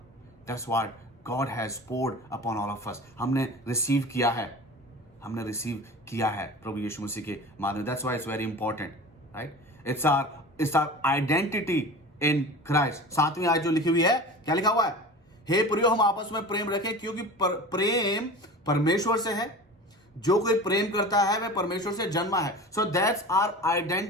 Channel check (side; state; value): both; normal; correlation 0.36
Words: That's what God has poured upon all of us. हमने रिसीव किया है प्रभु यीशु मसीह के माध्यम। That's why it's very important, right? It's our identity in Christ. 7वीं आयत जो लिखी हुई है, क्या लिखा हुआ है, हे प्रियो हम आपस में प्रेम रखें क्योंकि प्रेम परमेश्वर से है, जो कोई प्रेम करता है वह परमेश्वर से जन्मा है। So that's our